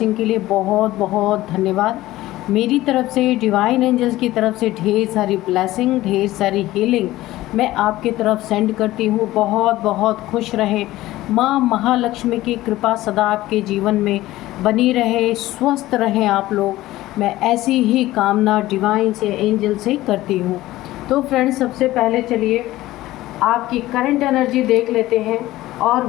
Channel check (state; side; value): quieter; right; 16.5 dB